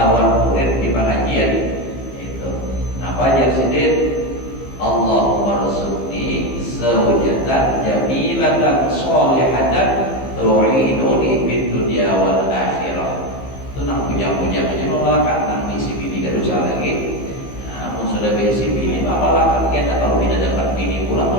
murid di pengajian itu. Napa ajar sijil? Allahumma rzuqni zawjatan jamilatan sholihatan tu'inuni fid dunya wal akhirah. Itu nang puja-puja aja memalakan nang misi bini kan usah lagi. Namun sudah misi bini memalakan kita, kalau tidak dapat bini pula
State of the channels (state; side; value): late; right; 15 ms